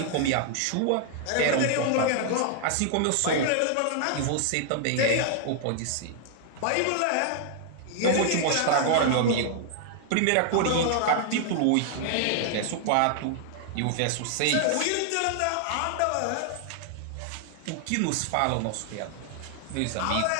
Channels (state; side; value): different; both; correlation 0.00